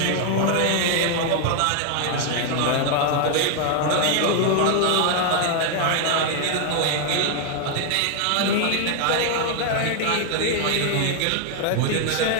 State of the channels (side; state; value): both; different; correlation 0.00